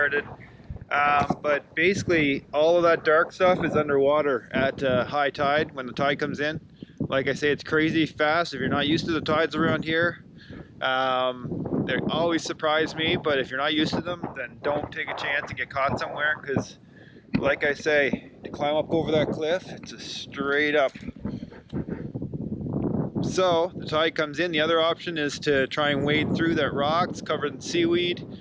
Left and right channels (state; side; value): identical; both; correlation 1.00